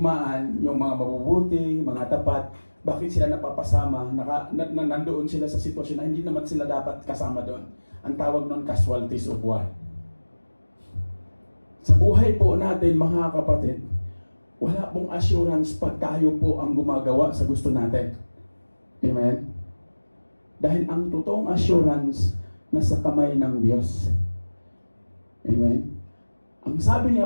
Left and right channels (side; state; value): both; inverted; correlation -1.00